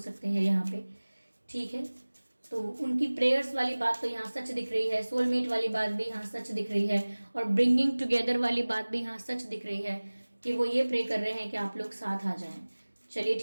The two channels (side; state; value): both; inverted; correlation -1.00